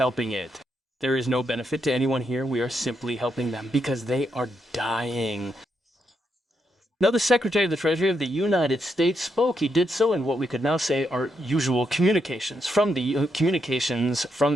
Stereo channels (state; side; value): normal; both; correlation 0.80